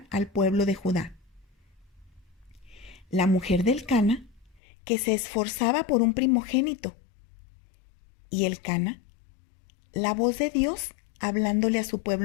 al pueblo de Judá. La mujer del Cana, que se esforzaba por un primogénito, y el Cana, la voz de Dios hablándole a su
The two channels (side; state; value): right; drops out; at 4.6 s